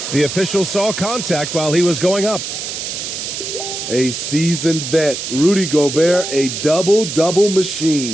The official saw contact while he was going up. A seasoned vet, Rudy Gobert, a double-double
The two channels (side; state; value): right; noise; hiss, 6 dB below the sound